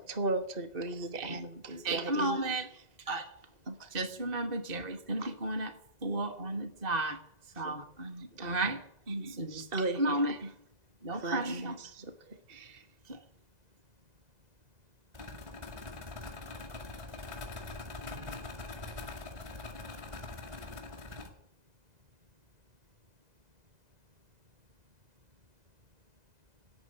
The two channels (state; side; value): late; left; 2.0 ms